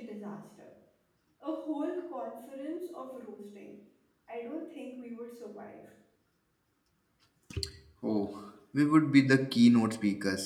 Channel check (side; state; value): both; identical; correlation 1.00